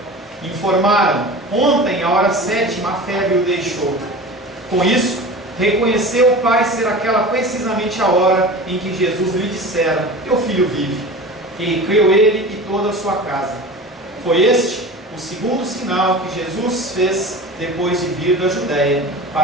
Informaram: ontem, à hora 7, a febre o deixou. Com isso, reconheceu o pai ser aquela precisamente a hora em que Jesus lhe dissera: teu filho vive. E creu ele e toda a sua casa. Foi este o segundo sinal que Jesus fez depois de vir da Judéia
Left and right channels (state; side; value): normal; both; correlation 0.35